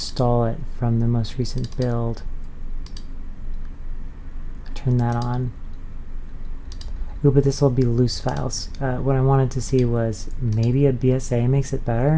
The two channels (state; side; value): identical; both; correlation 1.00